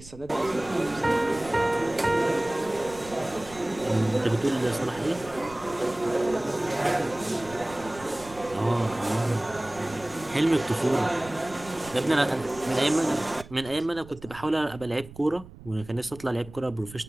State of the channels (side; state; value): right; noise; rumble, 18 dB below the sound